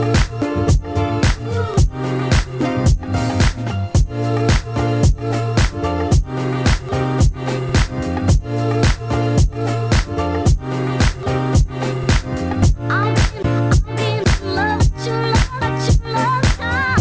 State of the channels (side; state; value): both; identical; correlation 1.00